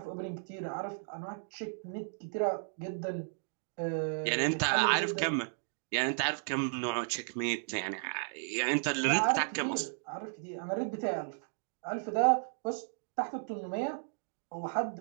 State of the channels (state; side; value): silent; left; digital silence